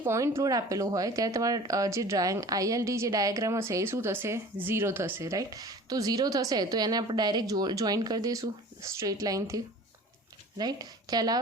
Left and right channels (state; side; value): normal; both; correlation 0.43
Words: પોઈન્ટ લોડ આપેલો હોય ત્યારે તમારા જે ILD જે ડાયાગ્રામ હશે એ શું થશે, 0 થશે, રાઈટ. તો 0 થશે તો એને આપણે ડાયરેક્ટ જોઈન કરી દઈશું સ્ટ્રેટ લાઇનથી, રાઈટ. ખ્યાલ